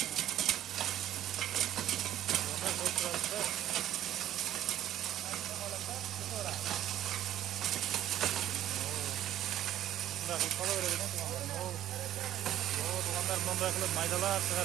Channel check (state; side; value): quieter; left; 12.2 dB